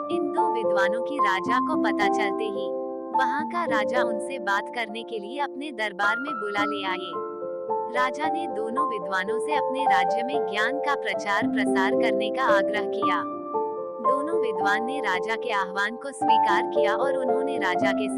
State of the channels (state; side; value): identical; both; correlation 1.00